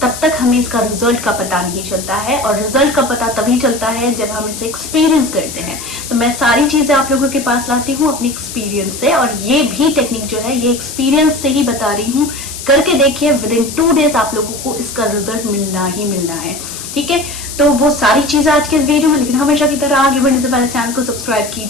तब तक हमें इसका रिजल्ट का पता नहीं चलता है, और रिजल्ट का पता तभी चलता है जब हम इसे एक्सपीरियंस करते हैं। तो मैं सारी चीजें आप लोगों के पास लाती हूँ अपनी एक्सपीरियंस से, और ये भी टेक्निक जो है ये एक्सपीरियंस से ही बता रही हूँ। करके देखिए, विद इन 2 डेज आप लोगों को इसका रिजल्ट मिलना ही मिलना है। ठीक है, तो वो सारी चीजें आज के इस वीडियो में। लेकिन हमेशा की तरह आगे बढ़ने से पहले चैनल को सब्सक्राइब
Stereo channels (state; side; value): noise; left; hiss, 10 dB below the sound